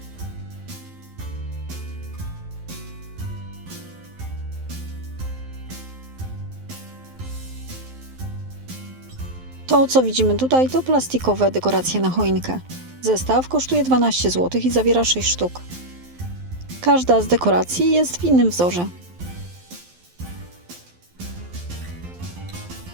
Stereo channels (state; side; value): late; left; 12 ms